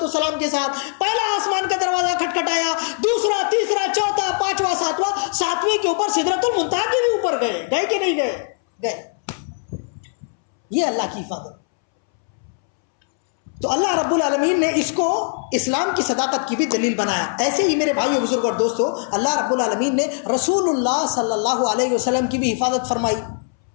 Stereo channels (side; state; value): right; silent; 65 dB below the other